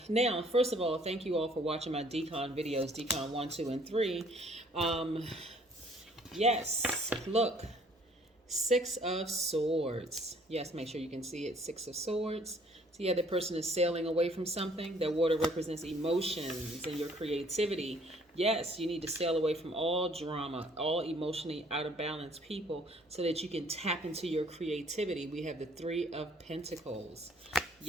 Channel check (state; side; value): normal; both; correlation 0.59